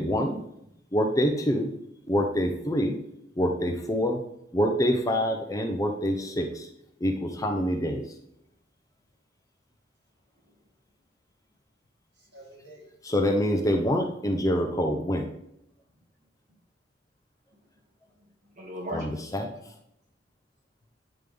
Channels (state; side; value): normal; both; correlation 0.69